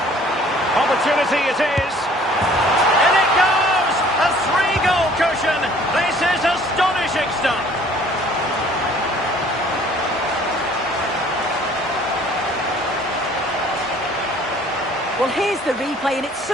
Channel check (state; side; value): normal; both; correlation 0.54